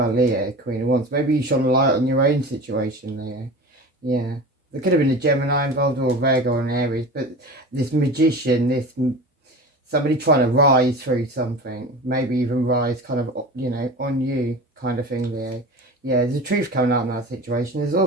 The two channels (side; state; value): both; normal; correlation 0.33